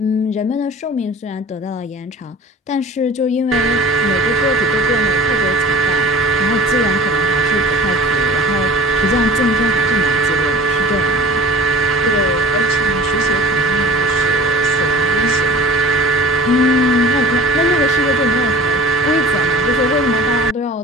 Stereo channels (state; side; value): normal; both; correlation 0.42